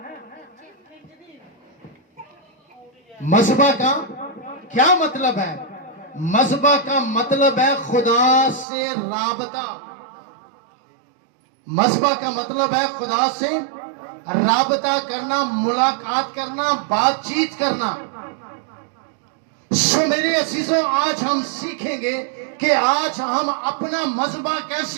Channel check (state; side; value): drops out; left; at 8.7 s